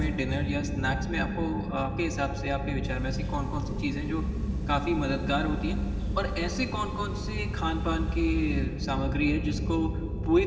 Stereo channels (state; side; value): identical; both; correlation 1.00